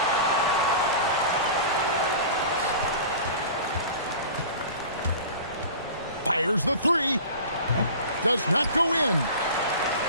Fires the three. Does not go in.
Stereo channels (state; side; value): inverted; both; correlation -0.38